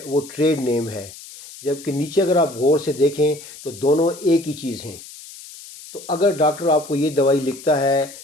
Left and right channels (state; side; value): noise; left; hiss, 16 dB below the sound